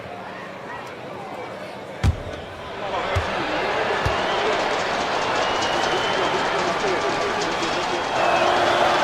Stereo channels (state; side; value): identical; both; correlation 1.00